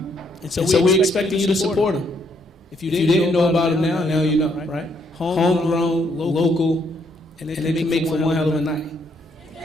so we're expecting you to support them. If you didn't know about it now you know, right? Homegrown, local, and they can make for one hell of a night.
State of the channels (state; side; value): normal; both; correlation 0.71